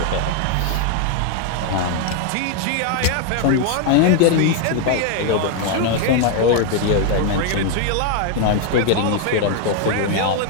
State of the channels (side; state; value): both; different; correlation 0.00